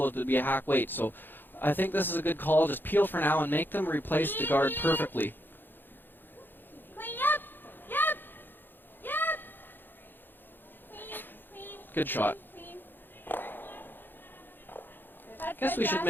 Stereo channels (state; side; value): late; right; 0.095 ms